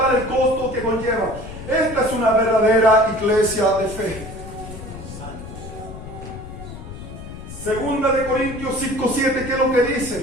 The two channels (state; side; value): noise; left; rumble, 12 dB below the sound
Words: el costo que conlleva. Esta es una verdadera iglesia de fe. Segunda de Corintios 5:7, ¿qué es lo que